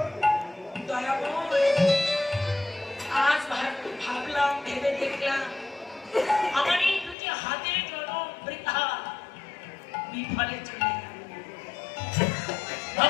দয়াময়, আজ ভাবলাম, ভেবে দেখলাম আমার এই দুটি হাতের জনম বৃথা বিফলে চলে গেল।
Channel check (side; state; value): right; drops out; at 7.2 s